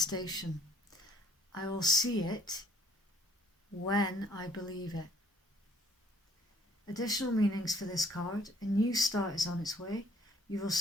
I will see it when I believe it. Additional meanings for this card: a new start is on its way. You will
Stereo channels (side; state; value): both; normal; correlation 0.59